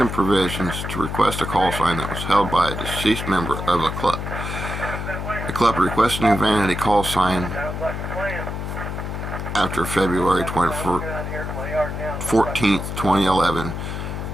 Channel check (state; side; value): noise; left; hum, 5 dB below the sound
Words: provisions to request a call sign that was held by a deceased member of a club. The club requesting a vanity call sign after February 14th, 2011